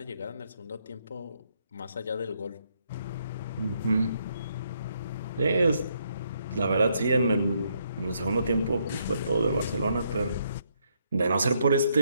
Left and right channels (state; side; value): inverted; both; correlation -0.75